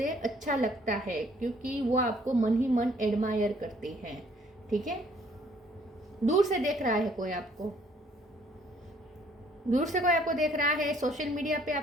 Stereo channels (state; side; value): normal; both; correlation 0.62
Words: अच्छा लगता है, क्योंकि वो आपको मन ही मन एडमायर करती है, ठीक है। दूर से देख रहा है कोई आपको, दूर से कोई आपको देख रहा है। सोशल मीडिया पे